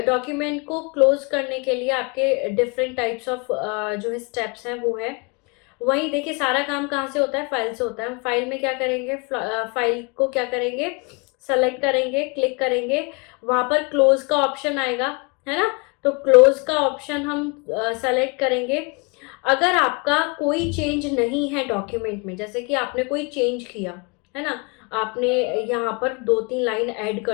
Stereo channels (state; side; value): quieter; right; 31.7 dB